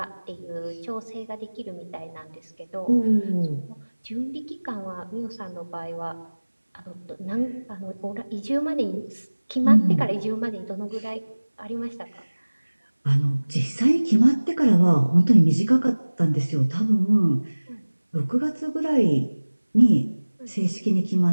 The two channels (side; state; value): both; inverted; correlation -1.00